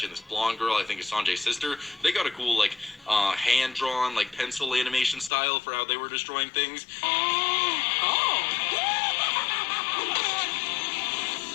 and this blonde girl, I think is Sanjay's sister, they got a cool like hand-drawn like pencil animation style for how they were destroying things.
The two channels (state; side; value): drops out; right; at 5.3 s